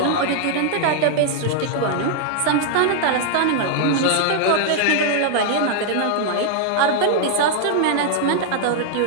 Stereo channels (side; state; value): both; different; correlation -0.01